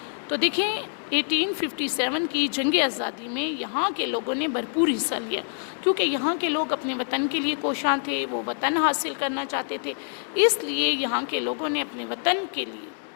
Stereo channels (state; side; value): silent; right; digital silence